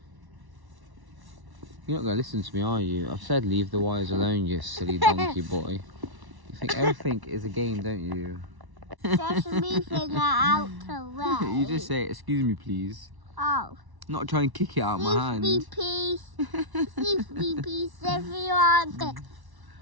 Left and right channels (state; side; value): late; left; 1.1 ms